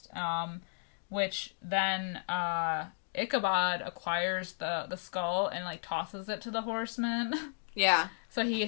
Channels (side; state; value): right; silent; digital silence